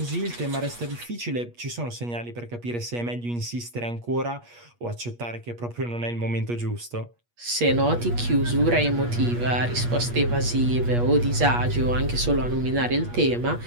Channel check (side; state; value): left; late; 8.4 ms